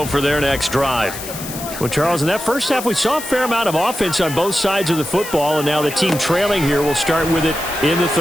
for their next drive. Well, Charles, in that first half, we saw a fair amount of offense on both sides of the football, and now the team trailing here will start with it in the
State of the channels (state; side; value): noise; left; hiss, 10 dB below the sound